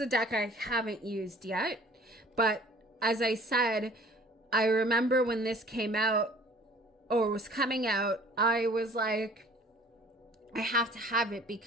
deck I haven't used yet, but as I said, I remember when this came out or was coming out, I was like, I have to have it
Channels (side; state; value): both; normal; correlation 0.51